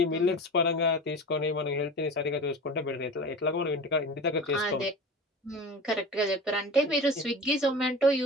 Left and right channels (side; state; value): both; normal; correlation 0.33